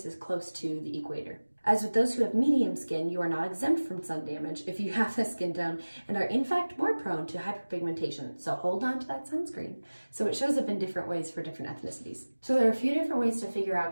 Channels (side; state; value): both; inverted; correlation -1.00